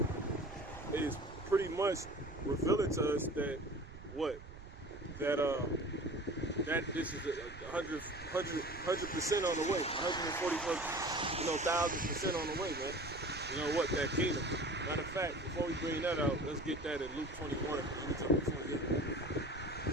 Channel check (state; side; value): noise; right; rumble, 15 dB below the sound